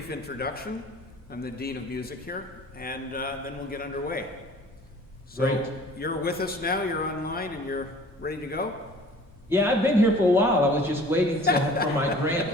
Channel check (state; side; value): normal; both; correlation 0.48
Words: introduction. I'm the Dean of Music here, and then we'll get underway. So Great. you're with us now, you're online, and you're ready to go? Yeah, I've been here for a while. I was just waiting for my grand